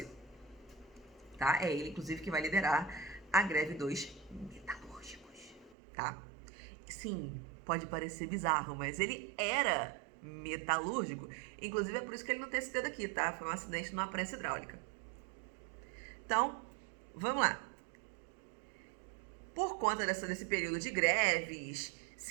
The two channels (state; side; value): drops out; left; at 5.8 s